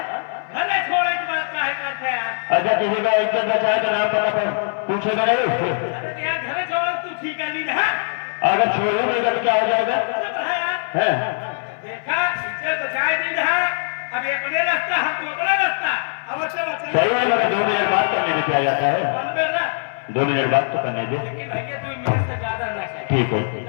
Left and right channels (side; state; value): right; silent; 58 dB below the other